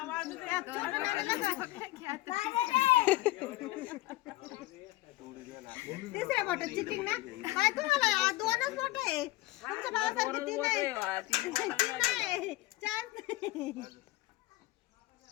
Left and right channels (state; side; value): quieter; right; 18.2 dB